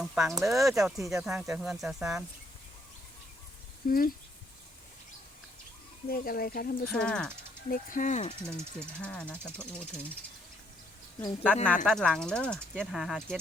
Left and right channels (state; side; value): normal; both; correlation 0.70